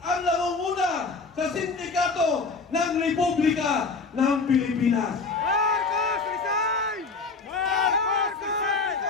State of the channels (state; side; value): quieter; right; 4.3 dB